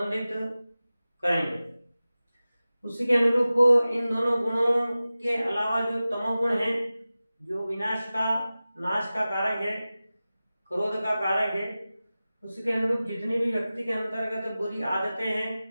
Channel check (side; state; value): both; inverted; correlation -0.96